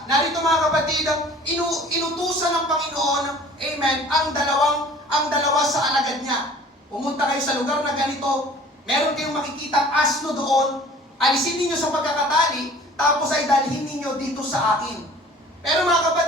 Narito mga kapatid, inutusan ng Panginoon, amen, ang dalawa sa alagad niya. Pumunta kayo sa lugar na ganito, meron kayong makikitang asno doon, alisin ninyo sa pagkakatali, tapos ay dalhin ninyo dito sa akin. Pero mga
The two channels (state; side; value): normal; both; correlation 0.48